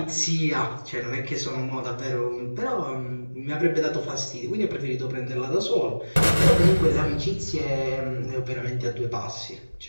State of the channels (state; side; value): inverted; both; correlation -1.00